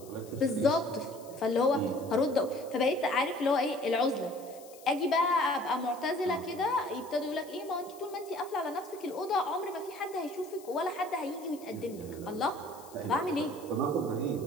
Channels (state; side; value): noise; left; hiss, 21 dB below the sound